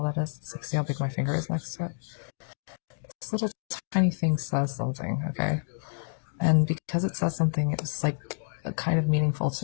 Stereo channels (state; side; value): silent; right; digital silence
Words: that is? It's like, see how big my finger is next to it? This little tiny thing says something, okay? And because it says something, it was like kind of meaningful